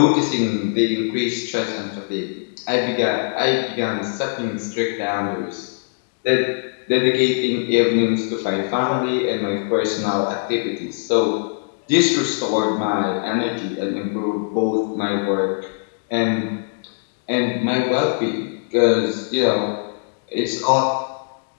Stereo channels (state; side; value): silent; right; digital silence